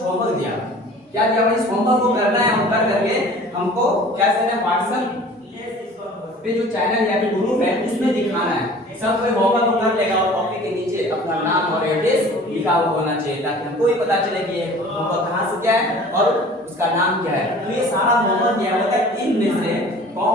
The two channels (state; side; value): normal; both; correlation 0.46